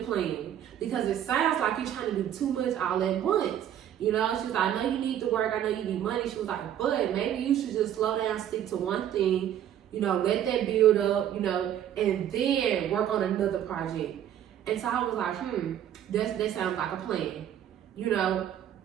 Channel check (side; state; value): left; quieter; 10.6 dB